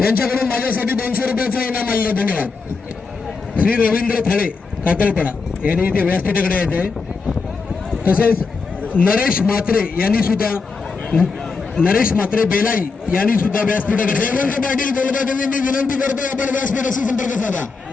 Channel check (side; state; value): right; quieter; 4.6 dB